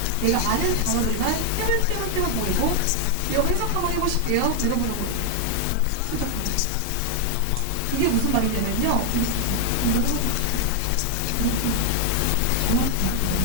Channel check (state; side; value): different; both; correlation 0.00